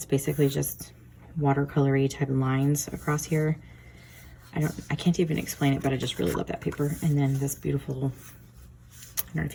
basically just watercolory type of lines across here. I can't even explain it, but I just really love that paper. And then this beautiful, I don't know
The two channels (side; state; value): both; identical; correlation 1.00